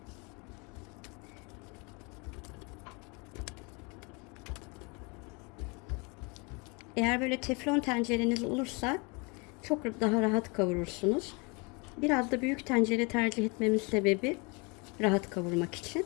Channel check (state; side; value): quieter; right; 30.3 dB